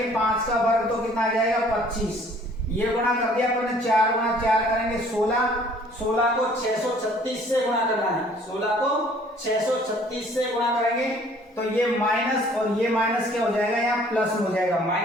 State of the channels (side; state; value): both; normal; correlation 0.56